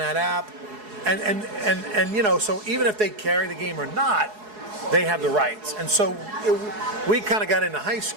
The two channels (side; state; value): left; late; 4.7 ms